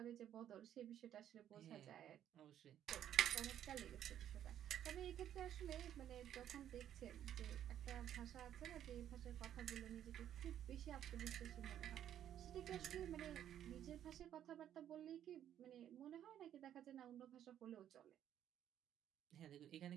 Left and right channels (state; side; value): quieter; left; 10.6 dB